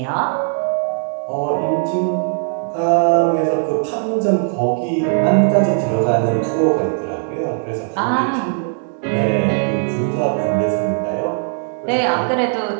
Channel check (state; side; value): silent; left; 67 dB below the other